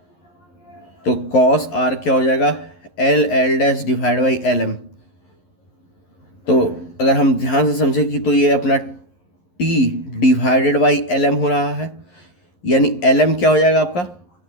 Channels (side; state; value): right; late; 11 ms